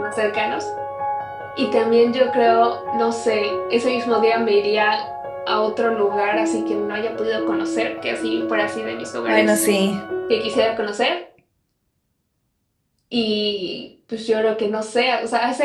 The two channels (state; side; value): identical; both; correlation 1.00